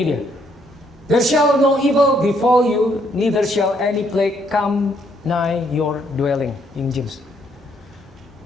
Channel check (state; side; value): normal; both; correlation 0.70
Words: dia. There shall no evil befall you, neither shall any plague come nigh your dwelling. King James.